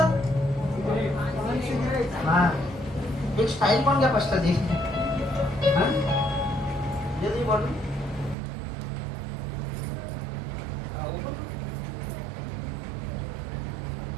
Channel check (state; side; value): drops out; left; at 8.3 s